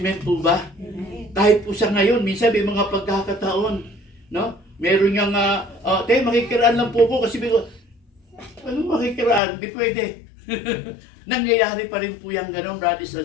po ba? Kahit po sa ngayon, minsan may mga pagkakataon, no? Meron niyang, makikiraan lang po ko kasi ano makikiraan? Di pwede. Nangyayari pa rin po yung gano'n, brothers and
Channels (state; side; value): drops out; right; at 9.4 s